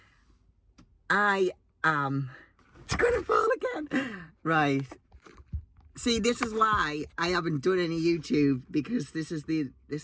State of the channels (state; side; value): identical; both; correlation 1.00